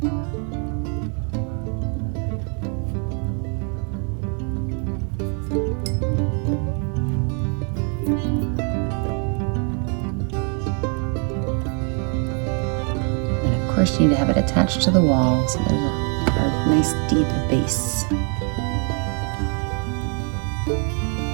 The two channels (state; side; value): quieter; left; 39.8 dB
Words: Of course, you need to have it attached to the wall, so there's a nice deep base.